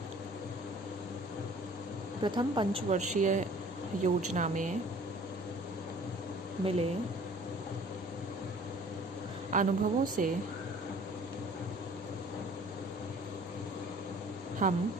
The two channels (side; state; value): both; normal; correlation 0.50